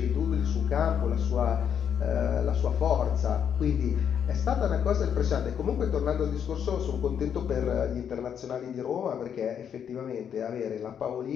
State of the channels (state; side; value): quieter; right; 8.3 dB